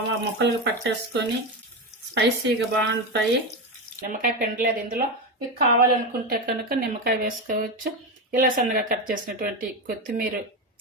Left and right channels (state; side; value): normal; both; correlation 0.14